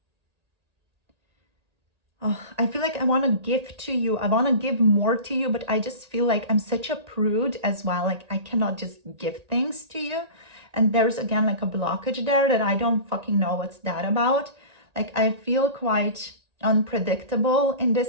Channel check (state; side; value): late; left; 1.8 ms